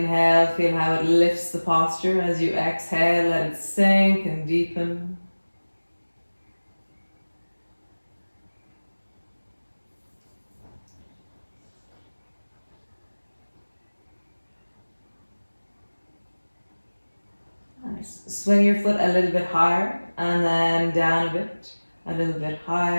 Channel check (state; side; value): inverted; both; correlation -1.00